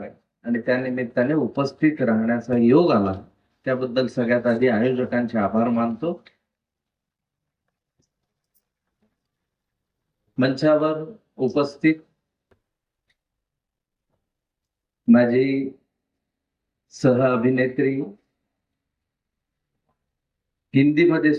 आणि त्या निमित्ताने उपस्थित राहण्याचा योग आला. त्याबद्दल सगळ्यात आधी आयोजकांचे आभार मानतो. मंचावर उपस्थित माझी सह अभिनेत्री, हिंदीमध्ये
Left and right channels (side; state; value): both; identical; correlation 1.00